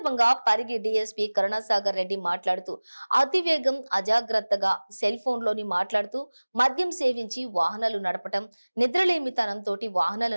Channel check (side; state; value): both; inverted; correlation -1.00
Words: పరిగి డీఎస్పీ కరుణాసాగర్ రెడ్డి మాట్లాడుతూ అతివేగం, అజాగ్రత్తగా సెల్ ఫోన్లోని మాట్లాడుతూ మద్యం సేవించి వాహనాలు నడపటం, నిద్రలేమితనంతో వాహనాలు